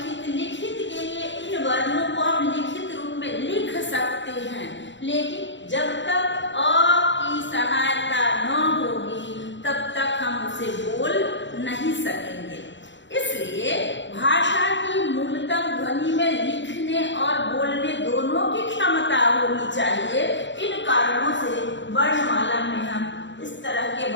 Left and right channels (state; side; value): late; right; 0.53 ms